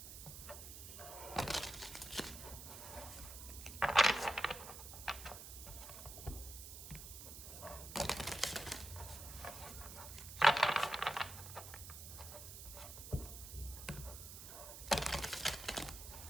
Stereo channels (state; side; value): noise; right; hiss, 11 dB below the sound